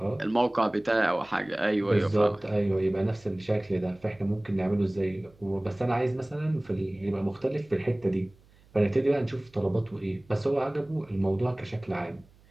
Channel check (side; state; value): right; noise; hum, 28 dB below the sound